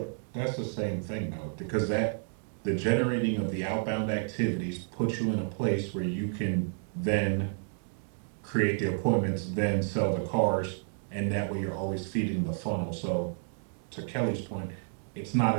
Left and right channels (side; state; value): left; silent; 57 dB below the other